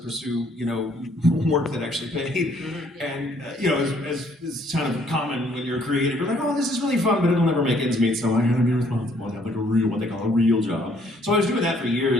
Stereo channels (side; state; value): both; normal; correlation 0.64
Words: work that actually paid. And, as is kind of common when you're creative, you're like, oh, this is really fun, but it'll never make ends meet, so I gotta be responsible and have like what they call a real job. So I was doing that for